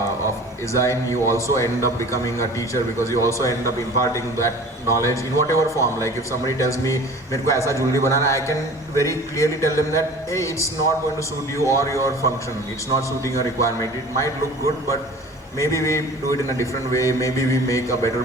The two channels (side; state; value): both; normal; correlation 0.42